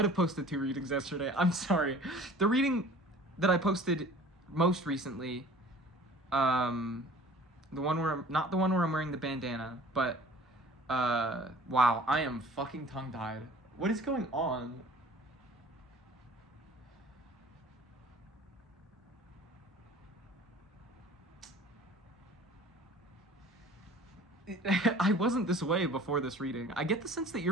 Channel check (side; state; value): both; normal; correlation 0.47